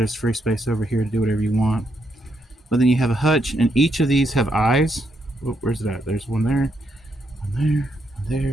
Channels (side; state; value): both; normal; correlation 0.78